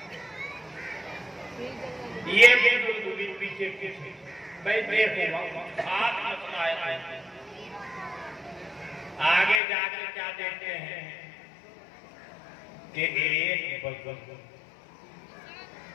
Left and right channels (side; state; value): right; drops out; at 9.6 s